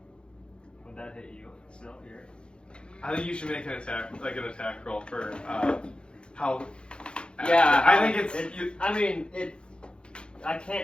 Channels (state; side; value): late; right; 0.053 ms